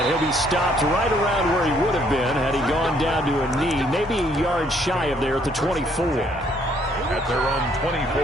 he'll be stopped right around where he would have been had he gone down to a knee, maybe a yard shy of there at the 24. At their own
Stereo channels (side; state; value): both; normal; correlation 0.66